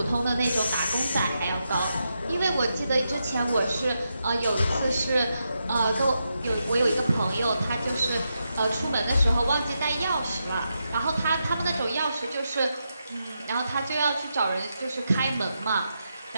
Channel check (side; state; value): both; inverted; correlation -0.85